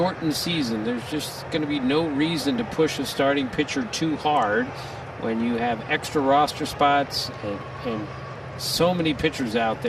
season. There's just going to be no reason to push a starting pitcher too hard when you have extra roster spots and so many pitchers out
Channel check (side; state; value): both; identical; correlation 1.00